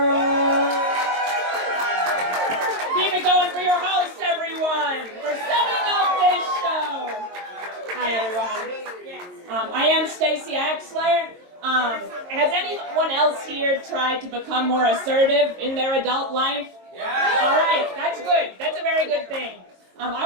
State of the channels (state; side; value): late; left; 22 ms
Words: Keep it going for your host, everyone, for setting up this show. Hi, everyone. I am Stacey Axler. Has anyone else here tried to become more assertive in their adult life? Yeah. All right, that's good. That's a very good thing.